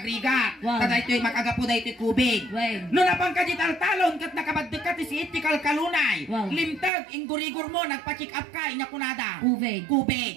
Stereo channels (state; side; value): drops out; left; at 6.9 s